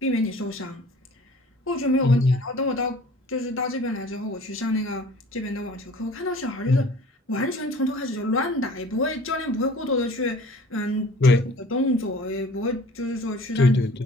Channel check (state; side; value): normal; both; correlation 0.47